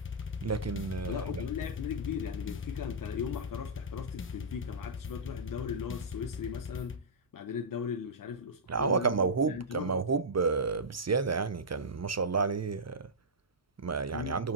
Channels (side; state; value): both; normal; correlation -0.14